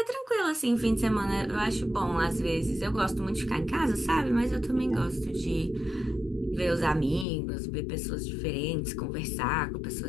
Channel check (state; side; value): drops out; right; at 7.2 s